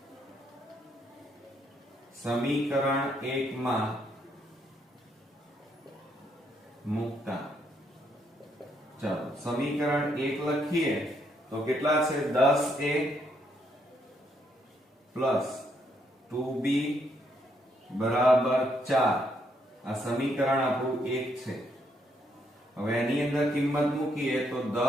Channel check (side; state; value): both; normal; correlation 0.74